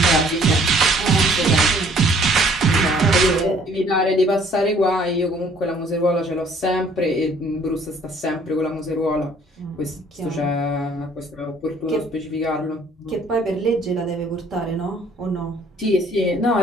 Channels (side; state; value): both; normal; correlation 0.58